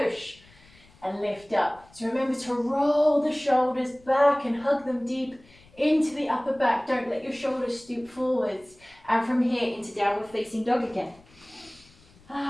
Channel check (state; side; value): noise; left; rumble, 27 dB below the sound